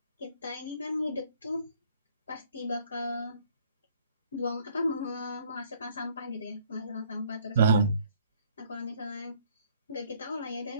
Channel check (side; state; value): both; inverted; correlation -0.61